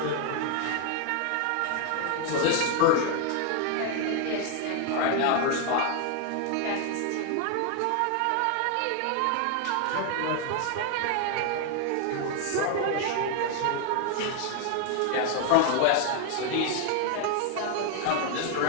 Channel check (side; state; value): both; different; correlation 0.00